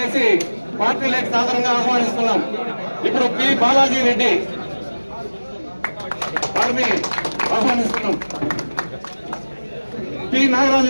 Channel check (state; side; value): inverted; both; correlation -1.00